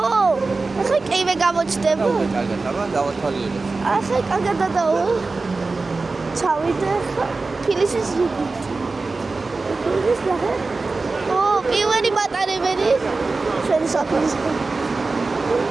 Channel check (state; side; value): quieter; left; 3.8 dB